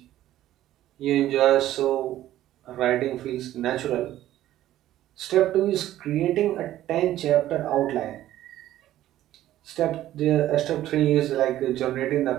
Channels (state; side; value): quieter; left; 13.6 dB